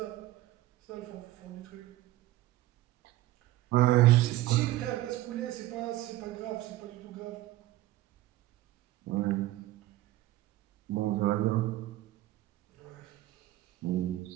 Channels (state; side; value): quieter; left; 16.0 dB